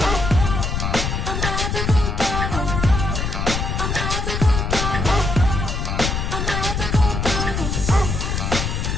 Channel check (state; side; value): noise; left; rumble, 1 dB below the sound